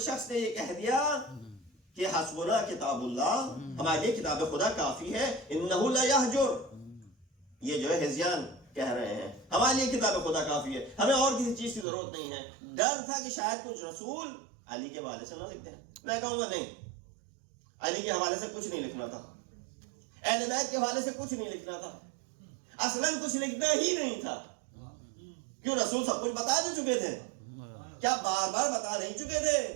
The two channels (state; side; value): drops out; left; at 11.9 s